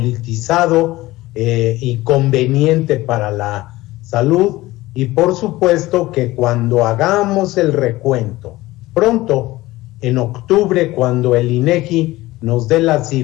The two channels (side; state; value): right; quieter; 18.4 dB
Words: y conveniente para la salud, y por supuesto que cuando hagamos el recuento pronto, en octubre, cuando el INEGI nos dé las